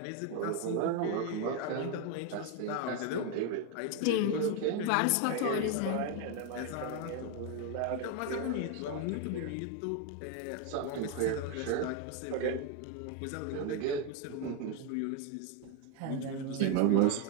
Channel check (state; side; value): different; both; correlation 0.01